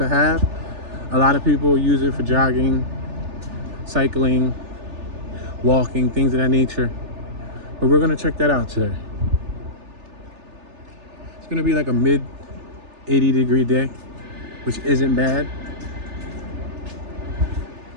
have. A lot of people use it for jogging, cycling, walking, things of that nature. But we're gonna check that out today. It's gonna be like a mid 80-degree day, which isn't bad.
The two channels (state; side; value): late; left; 3.4 ms